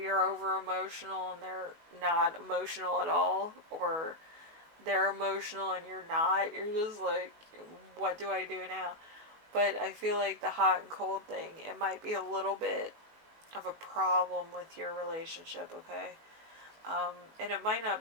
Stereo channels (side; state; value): left; late; 19 ms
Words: over emotional and they're not emotional at all, or they're emotional and you're not. You're just like, what do I do now? But I feel like the hot and cold thing, it might be a little bit of a problem with your relationship, okay? And it might not